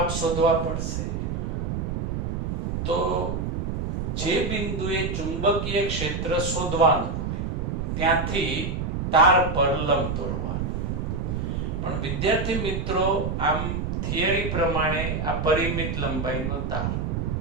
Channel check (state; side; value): noise; right; rumble, 2 dB below the sound